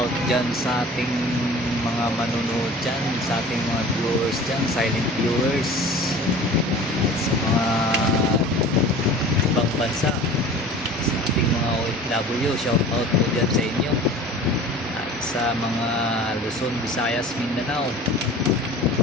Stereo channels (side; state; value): both; normal; correlation 0.42